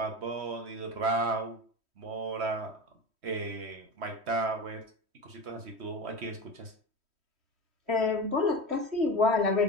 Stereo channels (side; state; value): left; late; 3.1 ms